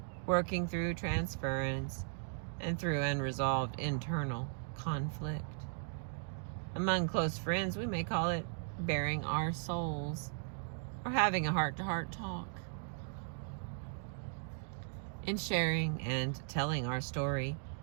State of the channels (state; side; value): silent; left; digital silence